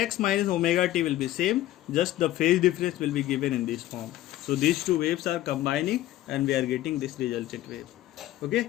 minus omega t will be same, just the phase difference will be given in this form. So these two waves are combining and we are getting this resultant wave.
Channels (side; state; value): right; quieter; 14.8 dB